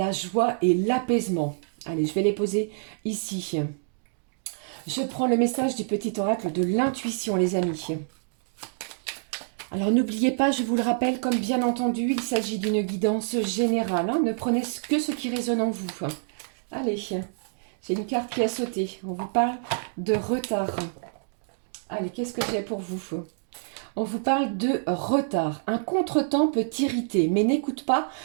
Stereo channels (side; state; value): left; silent; digital silence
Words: joie et l'apaisement. Allez, je vais les poser ici. Je prends le message du petit oracle de l'intuition, les amis. Alors n'oubliez pas, je vous le rappelle, comme bien entendu, il s'agit d'une guidance générale. Ne prenez que ce qui résonne en vous. Allez, j'ai une carte qui a sauté. On vous parle de retard. Allez, qu'est-ce que j'ai pour vous? On vous parle de retard. Un contretemps peut t'irriter, mais n'écoute pas